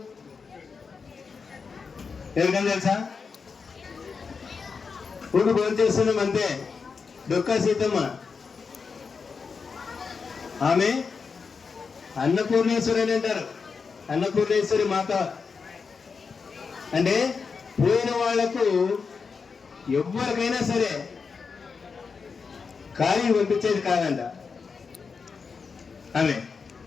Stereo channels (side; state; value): right; quieter; 5.3 dB